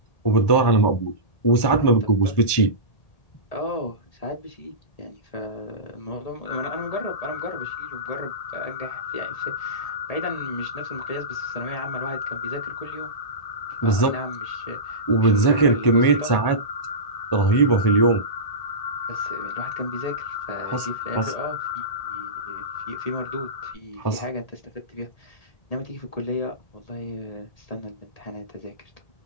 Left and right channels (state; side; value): late; right; 1.8 ms